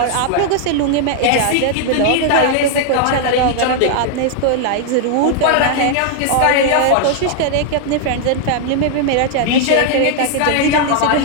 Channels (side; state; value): both; different; correlation 0.00